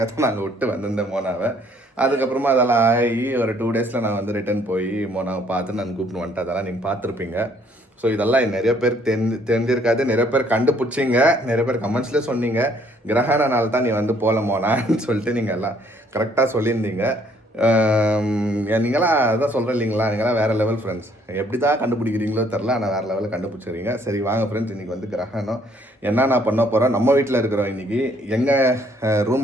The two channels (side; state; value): both; normal; correlation 0.64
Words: தான் நாங்கள் விட்டு வந்திருந்தேன் மோனாவை. அதுக்கப்புறமா அதெல்லாம் ஆகி ஒரு 2 டேஸில் நான் வந்து ரிட்டர்ன் போய் மோனாவை பார்த்து நான் கூப்பிட்டு வந்துட்டேன். அதெல்லாம் நீங்கள் பார்த்துருப்பீங்க. ஸோ இதெல்லாம் நிறைய பேர் தெரிஞ்சிருக்காது, நிறைய பேர் கண்டுபிடிச்சிங்க, நிறைய பேர் கமெண்ட்ஸ்லேயே சொன்னீங்க கிரகண நாள் தான் நீ வந்து போல மோனான்னு சொல்லிட்டு நீங்கள் எல்லாம் கரெக்டாக சொல்லியிருந்தீங்க. நீங்களாம் அதான் சொல்கிறேன் இல்லைங்களா, நீங்களாம் வேறு லெவல் ஃப்ரெண்ட்ஸ். எப்படி தான் கண்டுபிடிக்கிறீங்களோ தெரில, ஆனால் வேறு லெவலில் கண்டுபிடிச்சிக்கிறீங்க. சரி வாங்க ஃப்ரெண்ட்ஸ், இன்றைக்கி வந்து கிரகணம் என்னென்ன பண்ண போகிறோம். நம்ம வீட்டில் இருக்கிறோம் இன்றைக்கி, எங்கள்